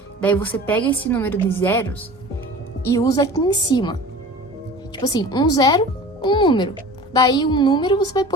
daí você pega esse número de zeros e usa aqui em cima. Tipo assim, um zero, um número. Daí um número você vai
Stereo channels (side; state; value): both; normal; correlation 0.39